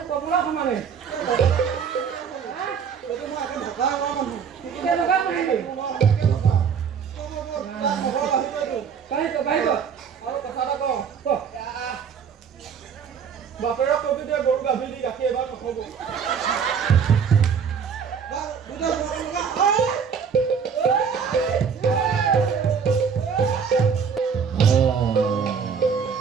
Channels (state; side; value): quieter; left; 6.7 dB